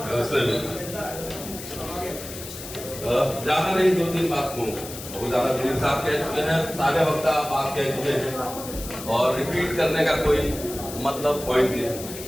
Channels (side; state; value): left; noise; hiss, 11 dB below the sound